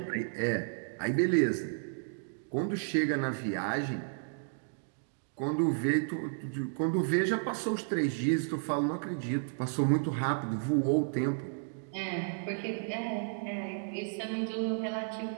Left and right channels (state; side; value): silent; left; digital silence